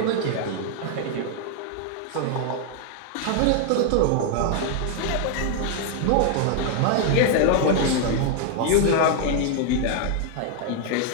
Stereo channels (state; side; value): different; both; correlation 0.00